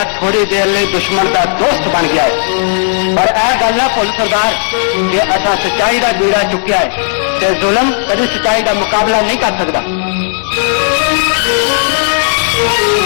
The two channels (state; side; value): silent; right; digital silence